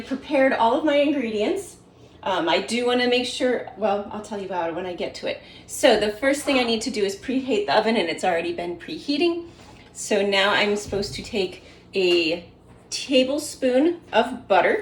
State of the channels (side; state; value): both; identical; correlation 1.00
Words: prepared all of my ingredients. I do want to make sure, well, I'll tell you about it when I get to it. So the first thing I need to do is preheat the oven, and it's already been preheating. So now I'm supposed to take a tablespoon of